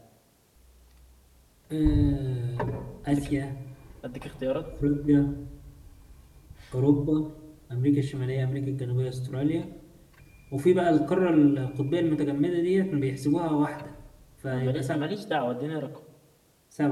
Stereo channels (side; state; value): both; identical; correlation 1.00